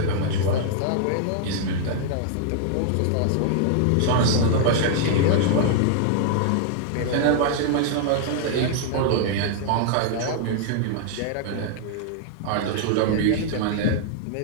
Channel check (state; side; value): different; both; correlation -0.01